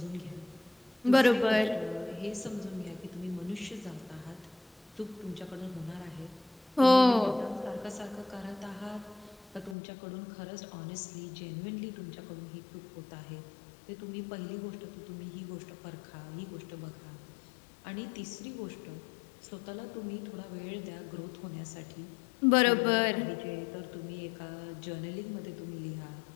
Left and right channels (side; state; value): right; drops out; at 9.8 s